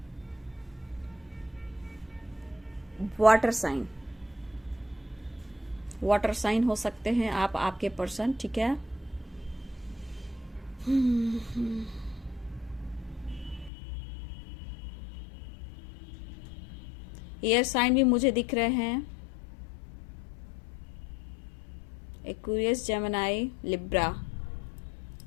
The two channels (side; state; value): right; drops out; at 13.7 s